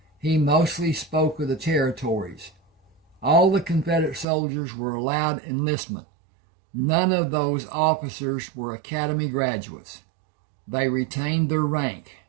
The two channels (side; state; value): left; drops out; at 4.2 s